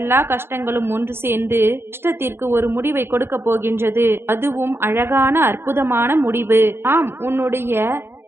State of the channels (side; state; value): left; late; 0.11 ms